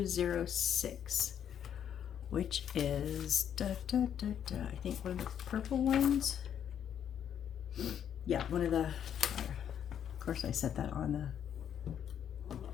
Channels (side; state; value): right; quieter; 9.2 dB